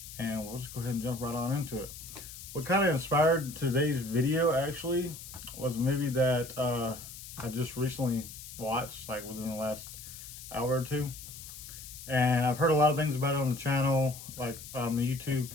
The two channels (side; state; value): left; noise; hiss, 13 dB below the sound